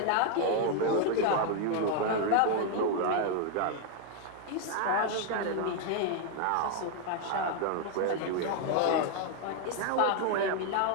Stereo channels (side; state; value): both; different; correlation 0.00